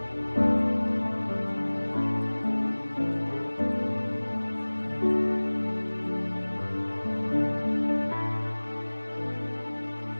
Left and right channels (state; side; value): inverted; both; correlation -1.00